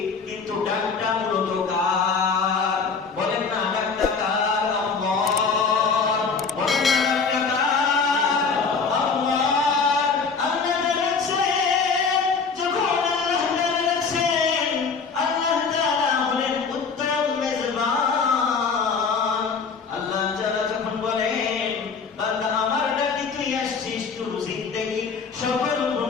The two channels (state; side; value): quieter; right; 5.2 dB